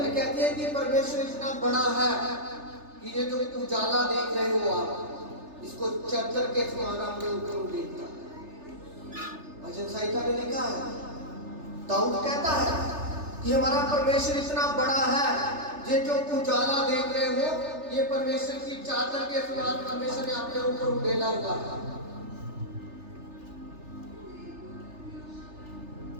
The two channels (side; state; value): left; late; 3.3 ms